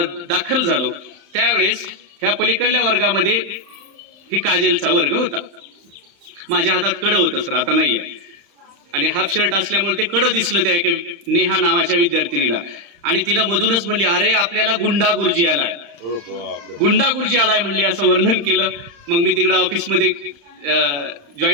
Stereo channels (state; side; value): late; left; 35 ms